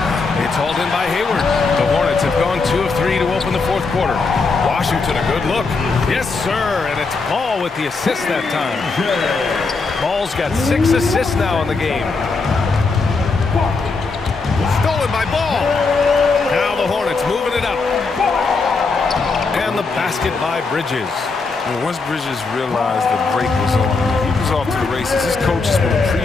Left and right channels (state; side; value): quieter; right; 4.2 dB